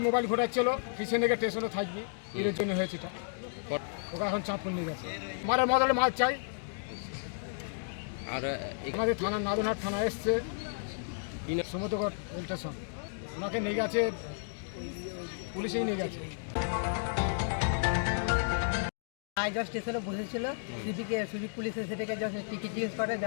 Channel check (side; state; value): right; silent; digital silence